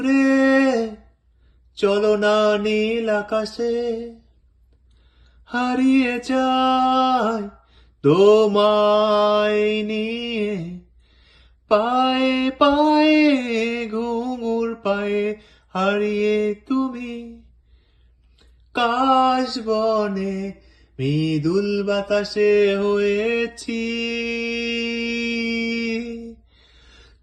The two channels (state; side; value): identical; both; correlation 1.00